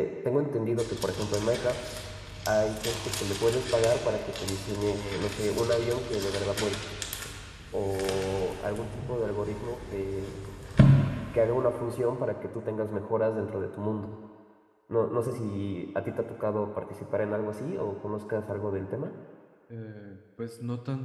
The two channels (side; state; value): both; identical; correlation 1.00